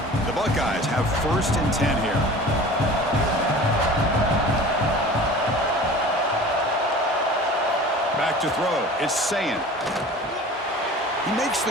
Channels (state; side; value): normal; both; correlation 0.41